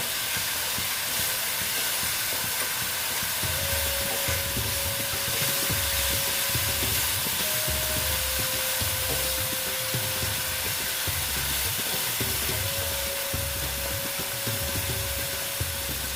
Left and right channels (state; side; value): noise; right; rumble, 21 dB below the sound